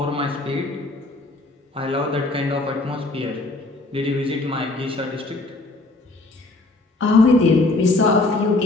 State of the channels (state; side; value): quieter; right; 3.0 dB